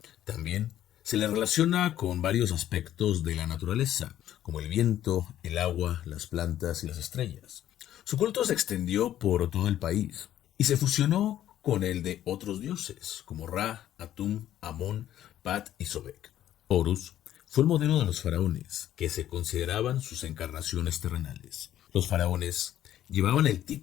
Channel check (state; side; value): quieter; right; 12.1 dB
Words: También se le relaciona con varios aspectos de la naturaleza, como el viento, el agua, las plantas y las estrellas. Su culto se extendió por todo el país y se fusionó con el de otros dioses, como Ra, Atum, Amón, Pat y Sobek. Horus fue el modelo de los faraones, que se consideraban sus encarnaciones terrenales. Los faraones llevaban el